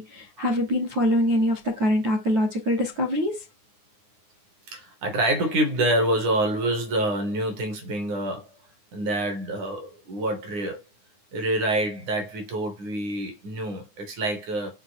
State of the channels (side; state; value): left; late; 9.7 ms